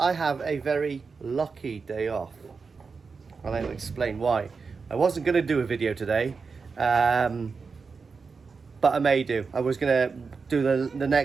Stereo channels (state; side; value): quieter; left; 4.9 dB